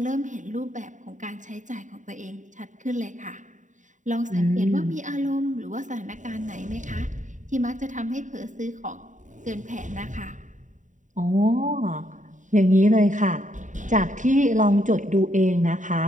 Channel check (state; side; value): late; left; 0.36 ms